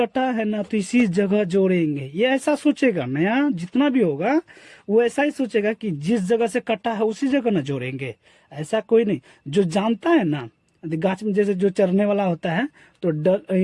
है ना तो इसी जगह जोड़ेंगे, ये ऐसा सोचेगा। नया जितना भी होगा वो ऐसा ही सोचेगा कि जिस जगह से कटा है उसी जगह ना जोड़ेंगे, ऐसा कोई नहीं। जो जानता है ना, गाछ में जैसे जो चढ़ने वाला होता है तो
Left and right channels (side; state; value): both; identical; correlation 1.00